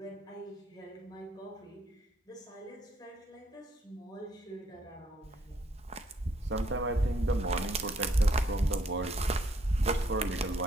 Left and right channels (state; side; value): normal; both; correlation 0.68